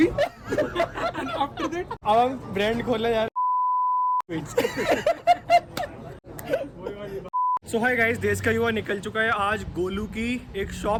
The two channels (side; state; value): both; identical; correlation 1.00